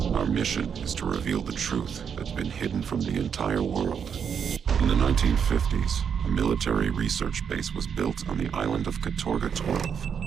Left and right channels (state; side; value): quieter; left; 7.3 dB